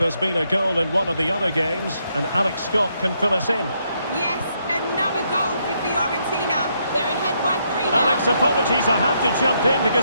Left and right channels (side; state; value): both; inverted; correlation -0.76